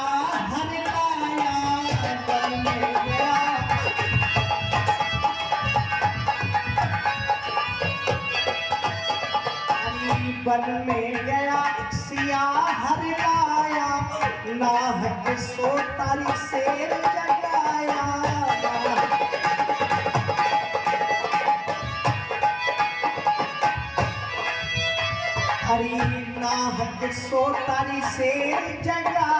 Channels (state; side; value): identical; both; correlation 1.00